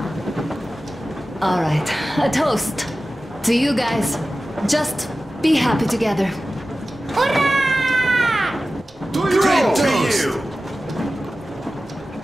Alright, a toast. To you guys. Just be happy together. Hurrah! Great toast!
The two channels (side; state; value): both; normal; correlation 0.95